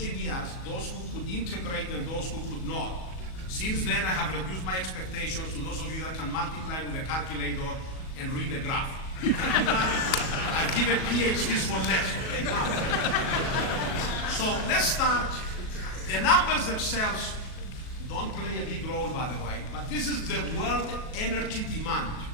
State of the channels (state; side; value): late; right; 38 ms